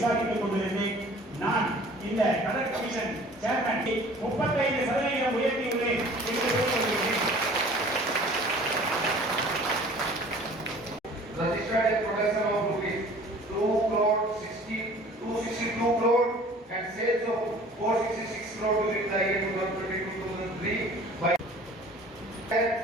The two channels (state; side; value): normal; both; correlation 0.48